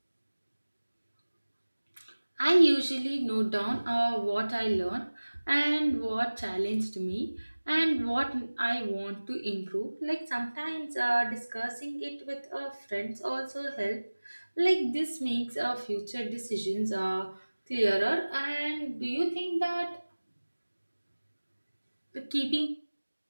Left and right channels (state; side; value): inverted; both; correlation -1.00